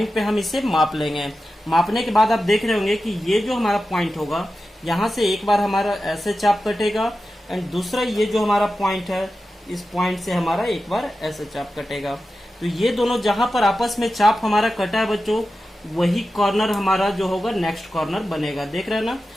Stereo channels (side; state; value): both; normal; correlation 0.93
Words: पे हम इसे माप लेंगे। मापने के बाद आप देख रहे होंगे कि ये जो हमारा पॉइंट होगा यहाँ से एक बार हमारा ऐसे चाप कटेगा एंड दूसरा ये जो हमारा पॉइंट है इस पॉइंट से हमारा एक बार ऐसे चाप कटेगा। तो ये दोनों जहां पर आपस में चाप हमारा कटा है बच्चों, वही कॉर्नर हमारा जो होगा नेक्स्ट कॉर्नर बनेगा। देख रहे हैं ना।